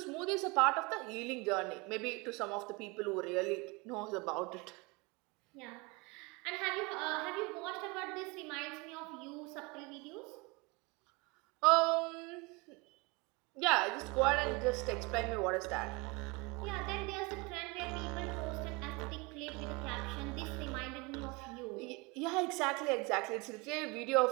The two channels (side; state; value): left; quieter; 26.9 dB